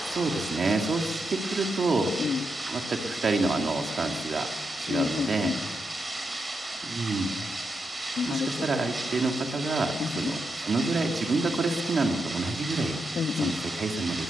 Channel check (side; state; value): both; normal; correlation 0.84